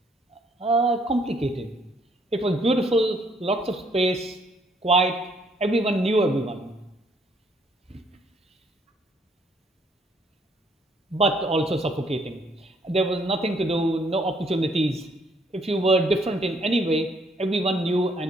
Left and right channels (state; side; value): normal; both; correlation 0.67